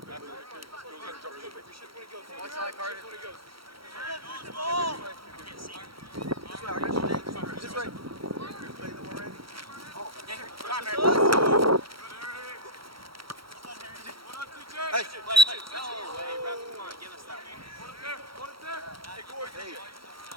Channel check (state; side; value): late; left; 0.75 ms